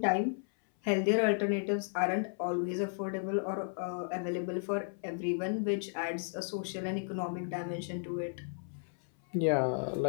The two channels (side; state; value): right; silent; 55 dB below the other